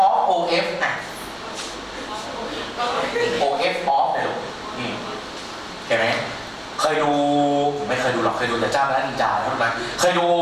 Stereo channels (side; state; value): both; identical; correlation 1.00